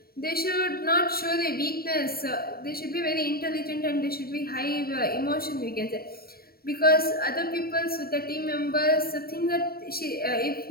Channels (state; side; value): late; right; 0.44 ms